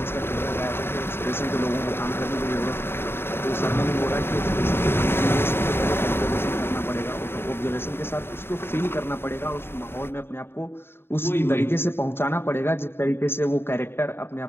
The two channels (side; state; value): right; late; 0.11 ms